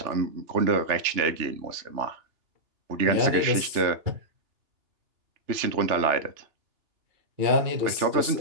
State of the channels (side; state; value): left; late; 2.9 ms